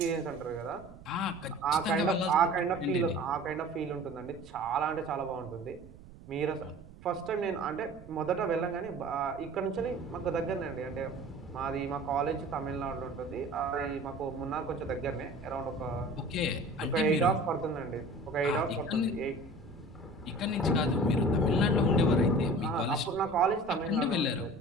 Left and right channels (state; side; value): noise; right; rumble, 19 dB below the sound